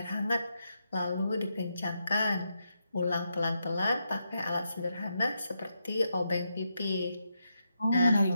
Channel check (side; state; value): both; inverted; correlation -0.83